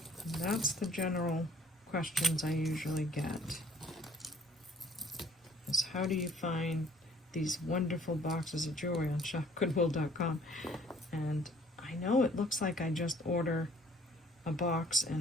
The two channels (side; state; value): both; normal; correlation 0.58